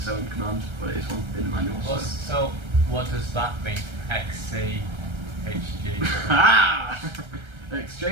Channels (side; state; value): left; late; 1.3 ms